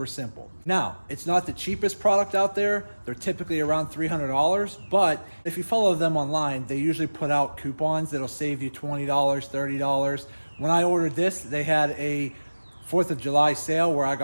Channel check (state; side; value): inverted; both; correlation -1.00